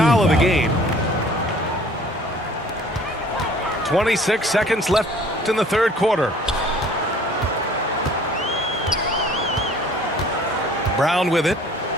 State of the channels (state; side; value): normal; both; correlation 0.52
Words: team of the foul. game. 26 seconds left in the third quarter. Brown with it.